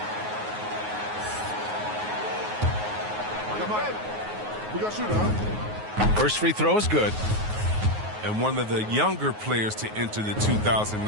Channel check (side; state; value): left; late; 9.4 ms